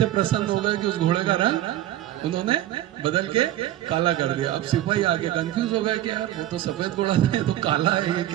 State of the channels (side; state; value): left; quieter; 13.6 dB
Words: प्रसन्न हो गए कि उस घोड़े का रंग उन्होंने बदल के काला कर दिया। अब सिपाही आके कंफ्यूज हो गए कि यार वो तो सफेद घोड़ा था, ये तो काला है, ये